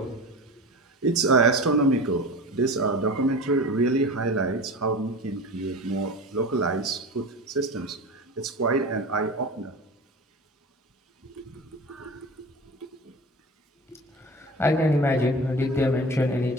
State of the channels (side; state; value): both; normal; correlation 0.32